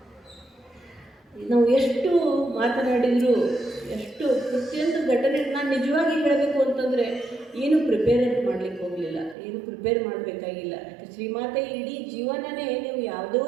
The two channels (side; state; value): left; drops out; at 9.3 s